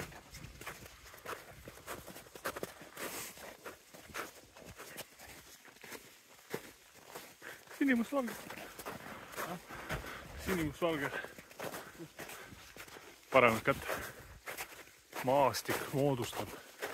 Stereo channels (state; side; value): identical; both; correlation 1.00